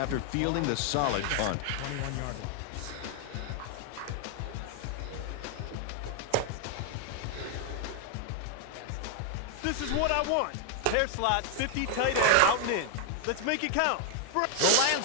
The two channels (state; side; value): different; both; correlation 0.00